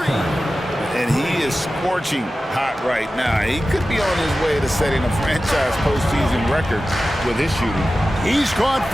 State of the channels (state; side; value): normal; both; correlation 0.94